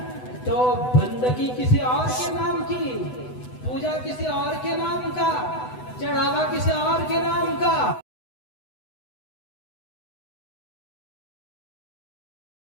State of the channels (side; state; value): right; late; 8.0 ms